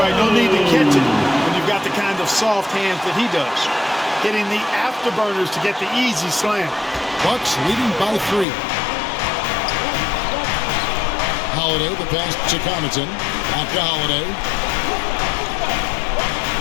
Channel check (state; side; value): drops out; right; at 8.5 s